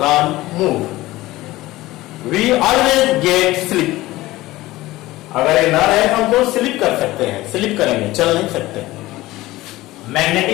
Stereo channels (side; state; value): right; quieter; 17.9 dB